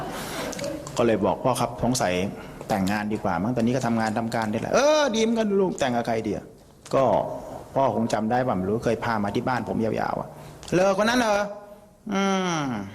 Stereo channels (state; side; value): identical; both; correlation 1.00